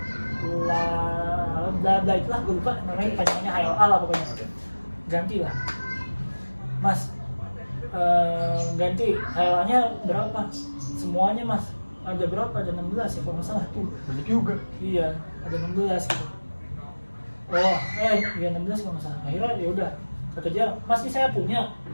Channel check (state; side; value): inverted; both; correlation -1.00